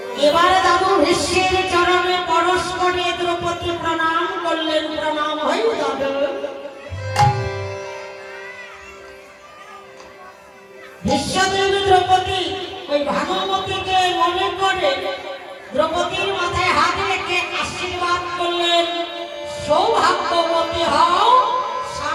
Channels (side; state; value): both; identical; correlation 1.00